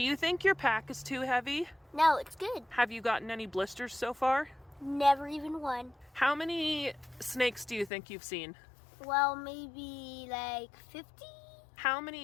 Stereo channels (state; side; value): drops out; right; at 7.9 s